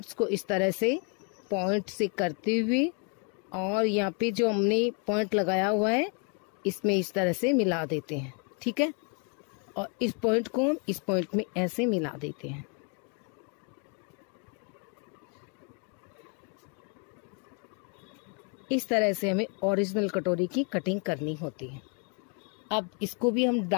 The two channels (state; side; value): quieter; right; 36.7 dB